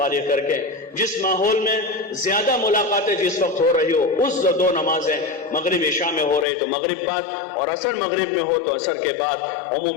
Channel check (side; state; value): right; drops out; at 6.5 s